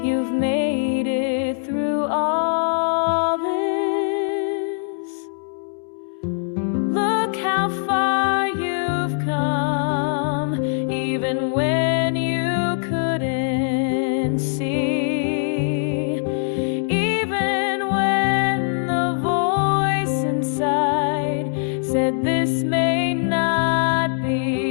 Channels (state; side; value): silent; right; 63 dB below the other